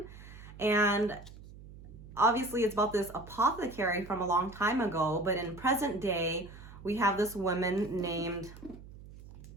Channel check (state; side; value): noise; right; hum, 17 dB below the sound